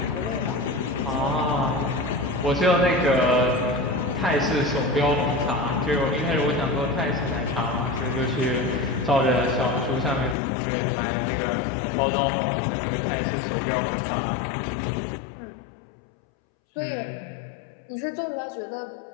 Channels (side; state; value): right; drops out; at 10.4 s